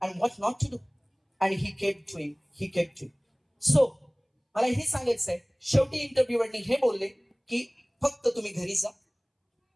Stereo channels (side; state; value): both; identical; correlation 1.00